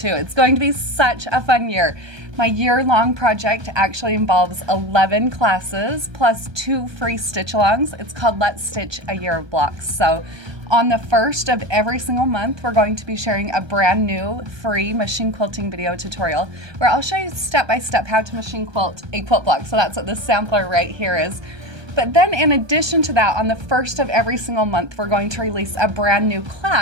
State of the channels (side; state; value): left; late; 1.2 ms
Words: It's going to be such a fun year. My year-long project actually involves 11 classes plus 2 free stitch-alongs. It's called Let's Stitch a Year of Blocks. So on the first of every single month, we're going to be sharing a brand new free machine quilting video tutorial where I'll show you step-by-step how to machine quilt a quilt block. So that's what this sampler right here is. But then in addition to that, on the first of every single month, we're going to release a brand new